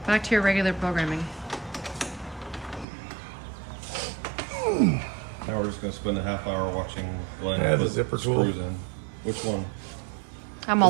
Back to your regular programming. Now we're just gonna spend a half hour watching Glenn Yeah, the put zipper screws tool. in. Which one? I'm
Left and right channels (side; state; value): left; drops out; at 2.9 s